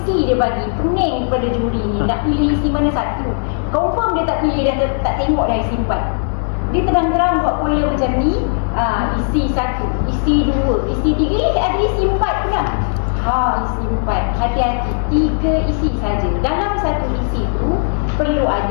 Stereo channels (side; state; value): right; silent; digital silence